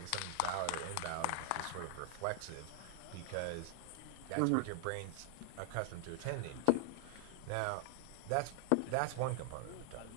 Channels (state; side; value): different; both; correlation 0.00